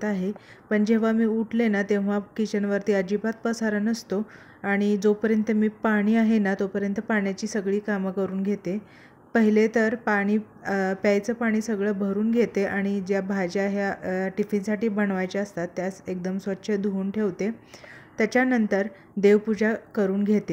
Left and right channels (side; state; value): both; identical; correlation 1.00